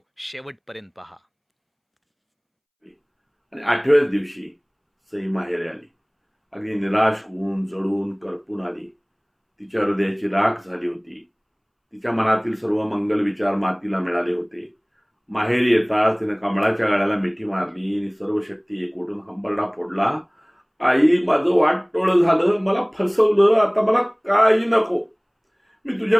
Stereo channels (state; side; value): identical; both; correlation 1.00